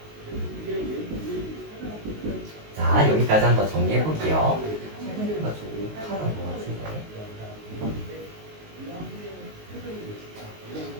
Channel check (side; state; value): left; late; 19 ms